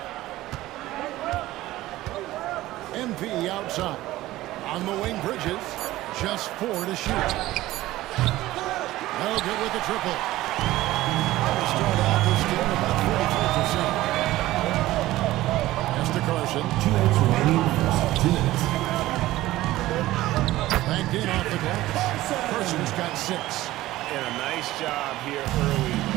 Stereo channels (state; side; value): quieter; left; 16.4 dB